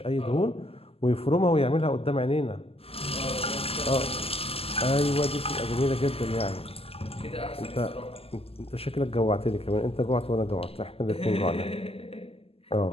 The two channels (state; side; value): late; right; 0.28 ms